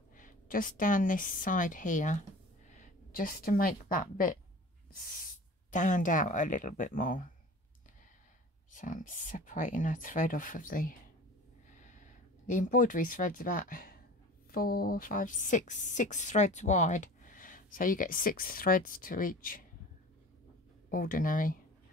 just down this side here, just to make that bit stand out a little bit more. So I'm separating a thread off of the embroidery thread's about 4, 5, 6 threads wide. So you get 6 threads to each ordinary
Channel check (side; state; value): both; normal; correlation 0.40